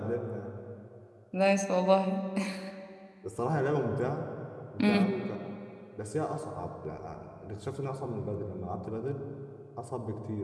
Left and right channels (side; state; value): both; identical; correlation 1.00